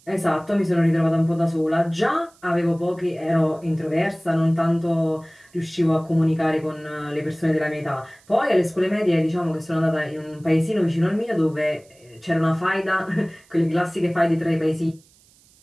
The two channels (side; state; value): right; noise; hiss, 30 dB below the sound